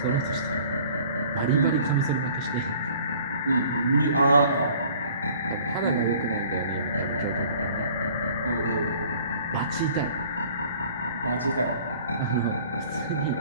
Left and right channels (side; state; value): both; inverted; correlation -0.51